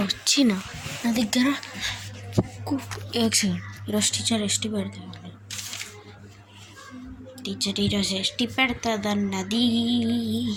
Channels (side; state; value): both; identical; correlation 1.00